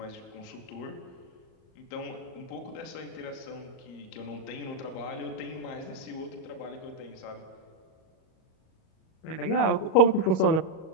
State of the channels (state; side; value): late; right; 37 ms